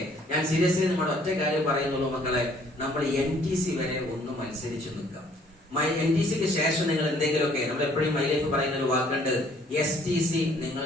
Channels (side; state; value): both; normal; correlation 0.60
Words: ഞാൻ സീരിയസ്ലി നമ്മുടെ ഒറ്റ കാര്യം പറയുന്നുള്ളൂ മക്കളെ, നമ്മൾ NTC വരെ ഒന്ന് മത്സരിച്ചു നിൽക്കാം. NTC-ക്ക് ശേഷം നിങ്ങൾ എന്തെങ്കിലുമൊക്കെ, നമ്മൾ എപ്പോഴും മൈ ലൈഫ് പറയുന്ന ഒരു വാക്കുണ്ട്, STC